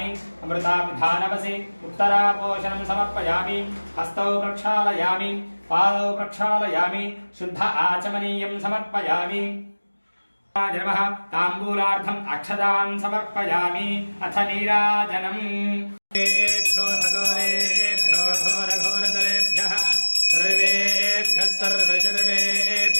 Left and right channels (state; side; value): inverted; both; correlation -1.00